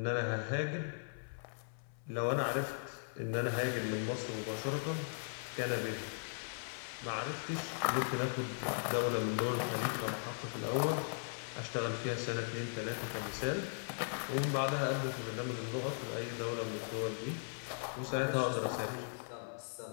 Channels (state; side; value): silent; right; 52 dB below the other